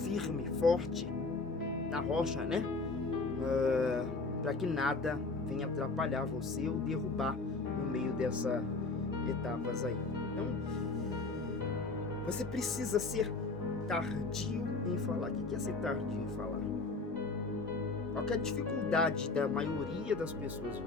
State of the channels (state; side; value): quieter; right; 3.7 dB